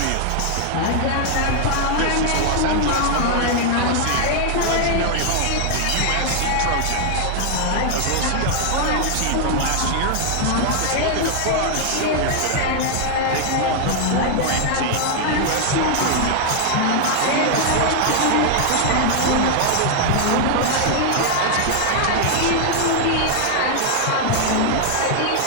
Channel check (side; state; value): both; different; correlation 0.00